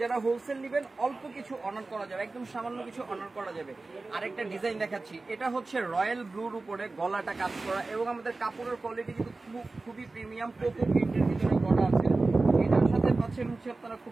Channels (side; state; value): left; quieter; 3.5 dB